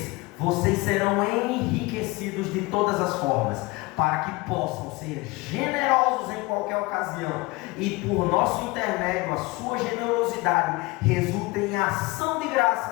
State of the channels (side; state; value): right; quieter; 23.0 dB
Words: vocês serão enriquecidos de todas as formas, para que possam ser generosos em qualquer ocasião, e por nosso intermédio a sua generosidade resulte em ação de